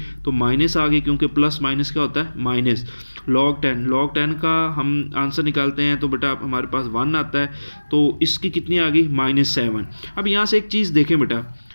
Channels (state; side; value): inverted; both; correlation -1.00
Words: तो माइनस आ गई, क्योंकि प्लस माइनस क्या होता है, माइनस। log 10 का हम आंसर निकालते हैं तो बेटा हमारे पास 1 आता है, तो इसकी कितनी आ गई, -7। अब यहाँ से एक चीज़ देखें बेटा,